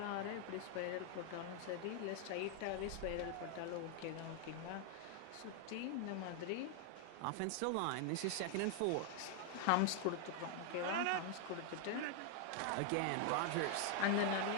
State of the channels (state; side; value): different; both; correlation 0.00